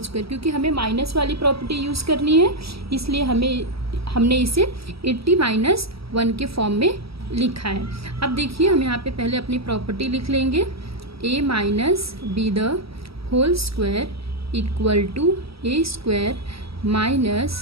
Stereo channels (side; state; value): left; late; 0.76 ms